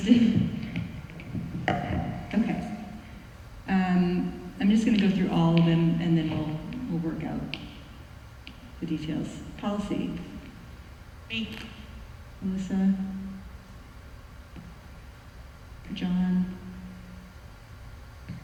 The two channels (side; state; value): both; identical; correlation 1.00